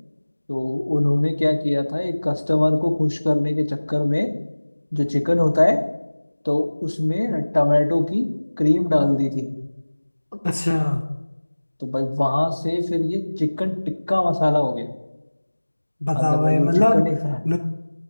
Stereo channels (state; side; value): inverted; both; correlation -1.00